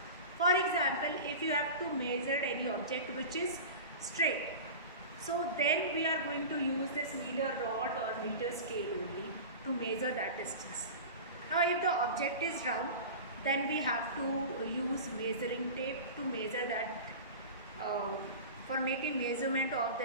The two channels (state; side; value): inverted; both; correlation -0.31